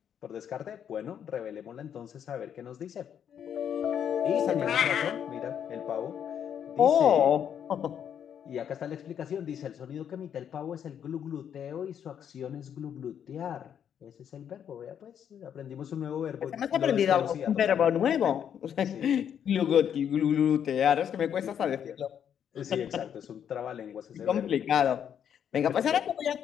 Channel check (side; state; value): right; quieter; 8.8 dB